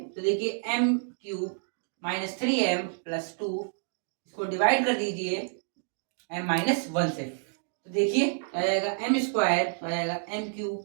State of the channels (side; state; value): left; silent; digital silence